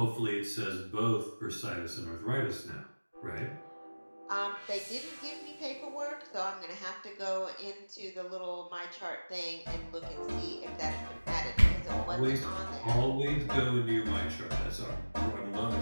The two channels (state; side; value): inverted; both; correlation -1.00